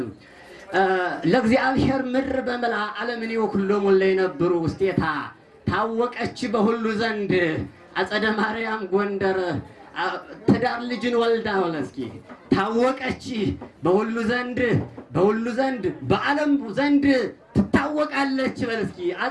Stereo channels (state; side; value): identical; both; correlation 1.00